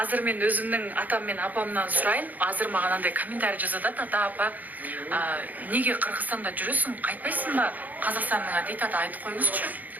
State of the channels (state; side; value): late; left; 0.081 ms